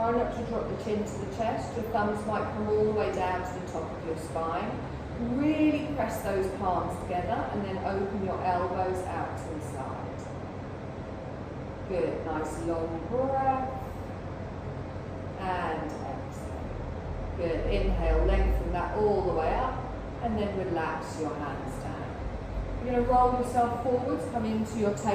not to drop the chin to the chest. Your thumbs might come all the way down to the top of your spine. Really press those palms together and then open your elbows out to the side. Good. Nice long breath. And exhale. Good. Inhale, lengthen that all the way up and then relax your hands down. You're going to roll yourself forwards, come into your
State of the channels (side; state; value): both; identical; correlation 1.00